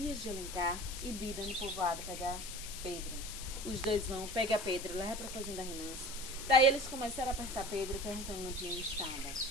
de Alencar e Bida no povoado pegar Pedro. Os dois vão, pega Pedro, leva para a fazenda Remanso. Daí eles começaram a apertar Pedro, perguntando onde Lampião estava.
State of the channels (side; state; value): left; noise; hiss, 9 dB below the sound